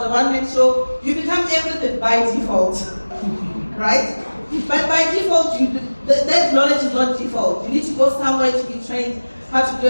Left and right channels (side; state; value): both; inverted; correlation -1.00